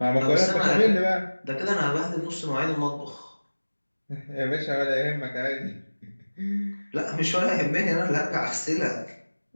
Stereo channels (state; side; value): inverted; both; correlation -1.00